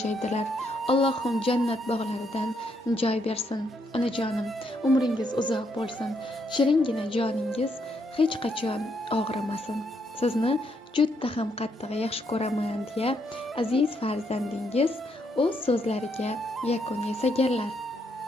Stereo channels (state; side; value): normal; both; correlation 0.75